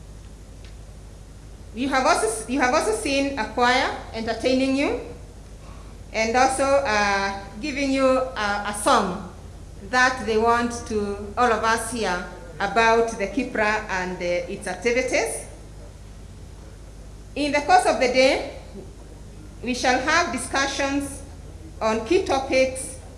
You have also seen a choir entertaining you, and also giving you a song that they want to all of us hear about the KIPPRA and its activities. In the course of the day, we shall have discussions on key topics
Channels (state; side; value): identical; both; correlation 1.00